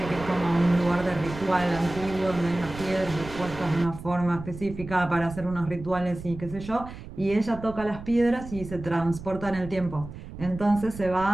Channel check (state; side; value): noise; right; rumble, 13 dB below the sound